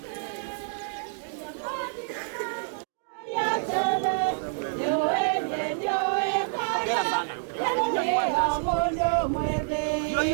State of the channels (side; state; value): left; silent; digital silence